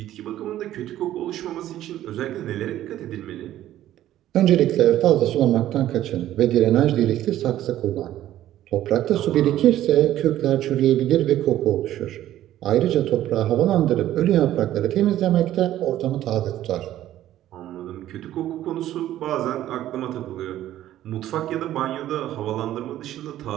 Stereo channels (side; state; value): left; quieter; 13.1 dB